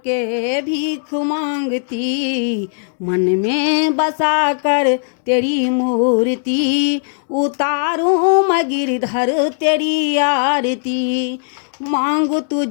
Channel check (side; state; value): right; silent; digital silence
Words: भीख मांगती, मन में बसा कर तेरी मूर्ति उतारूं मैं गिरधर तेरी आरती। मांगू